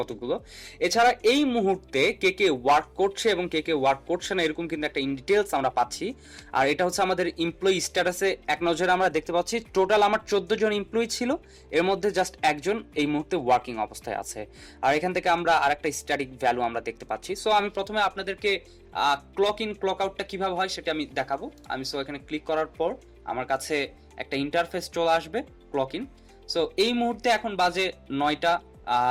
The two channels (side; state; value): both; identical; correlation 1.00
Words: এছাড়া এই মুহূর্তে কে কে ওয়ার্ক করছে এবং কে কে ওয়ার্ক করছে না এরকম কিন্তু একটা ইন ডিটেলস আমরা পাচ্ছি। আর এটা হচ্ছে আমাদের এমপ্লয়ি স্ট্যাটাসে এক নজরে আমরা দেখতে পাচ্ছি টোটাল আমার 14 জন এমপ্লয়ি ছিল, এর মধ্যে জাস্ট একজন এই মুহূর্তে ওয়ার্কিং অবস্থায় আছে। আর এখান থেকে আমরা আরেকটা স্ট্যাটিক ভ্যালু আমরা দেখতে পাচ্ছি। সো আমি প্রথমে আপনাদেরকে ক্লক ইন ক্লক আউটটা কিভাবে হয় সেটা আমি দেখাবো। আমি সো এখানে ক্লিক করার পর আমার কাছে একটা ইন্টারফেস চলে আসবে ক্লক ইন। সো এই মুহূর্তে এখন বাজে 9টা